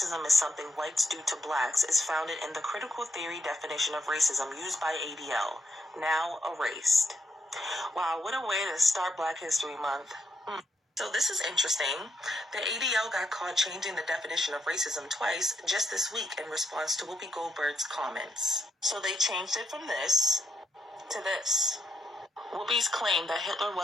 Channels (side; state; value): both; normal; correlation 0.78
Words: is something whites do to blacks is founded in the critical theory definition of racism used by ADL, now erased. Wow, what a way to start Black History Month. So this is interesting. The ADL got caught changing the definition of racism twice just this week in response to Whoopi Goldberg's comments. So they changed it from this to this. Whoopi's claim that Hitler